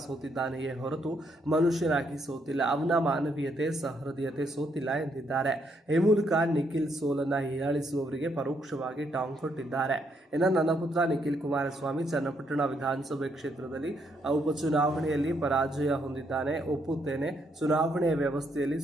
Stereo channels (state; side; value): normal; both; correlation 0.74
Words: ಸೋತಿದ್ದಾನೆಯೇ ಹೊರತು ಮನುಷ್ಯನಾಗಿ ಸೋತಿಲ್ಲ. ಅವನ ಮಾನವೀಯತೆ ಸಹೃದಯತೆ ಸೋತಿಲ್ಲ ಎಂದಿದ್ದಾರೆ. ಈ ಮೂಲಕ ನಿಖಿಲ್ ಸೋಲನ್ನ ಹೀಯಾಳಿಸುವವರಿಗೆ ಪರೋಕ್ಷವಾಗಿ ಟಾಂಗ್ ಕೊಟ್ಟಿದ್ದಾರೆ. ಇನ್ನು ನನ್ನ ಪುತ್ರ ನಿಖಿಲ್ ಕುಮಾರಸ್ವಾಮಿ ಚನ್ನಪಟ್ಟಣ ವಿಧಾನಸಭೆ ಕ್ಷೇತ್ರದಲ್ಲಿ ಉಪಚುನಾವಣೆಯಲ್ಲಿ ಪರಾಜಯ ಹೊಂದಿದ್ದಾನೆ. ಒಪ್ಪುತ್ತೇನೆ. ಚುನಾವಣೆಯ ವ್ಯವಸ್ಥೆಯಲ್ಲಿ